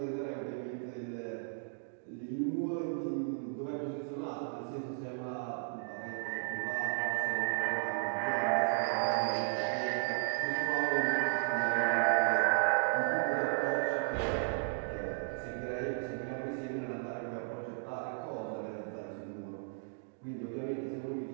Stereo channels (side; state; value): left; silent; digital silence